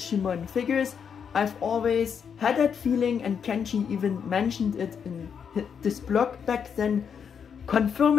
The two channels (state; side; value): quieter; right; 7.1 dB